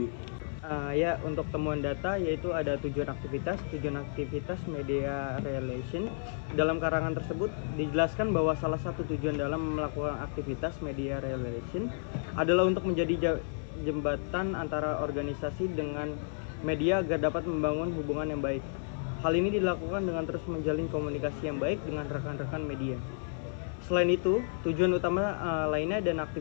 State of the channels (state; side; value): silent; right; 57 dB below the other